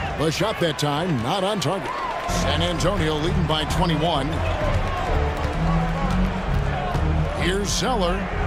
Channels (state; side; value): identical; both; correlation 1.00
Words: The shot that time, not on target. San Antonio leading by 21. Here's Zeller.